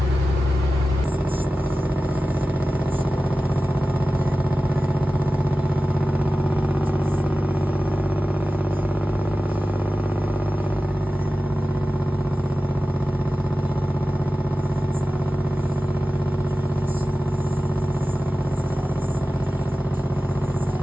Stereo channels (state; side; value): normal; both; correlation 0.95